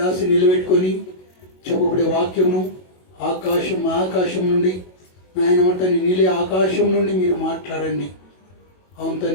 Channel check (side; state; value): right; late; 22 ms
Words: నిలబెట్టుకొని చెప్పబడే వాక్యమును ఆకాశం నుండి నాయన మట్టని నీలే ఆకాశం నుండి మీరు మాట్లాడండి. అవును